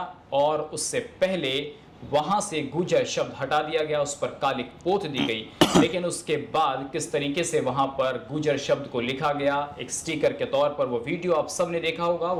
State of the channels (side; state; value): both; identical; correlation 1.00